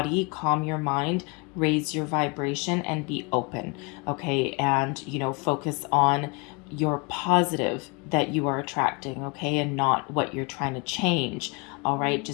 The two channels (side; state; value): right; quieter; 30.3 dB